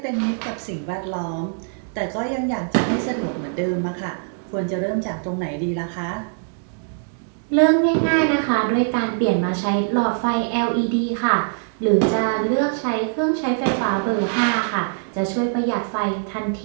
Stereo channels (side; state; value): left; silent; digital silence